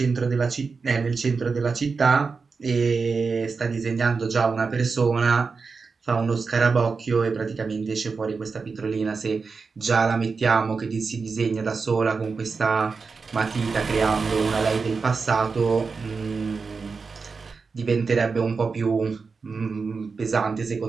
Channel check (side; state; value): left; quieter; 4.8 dB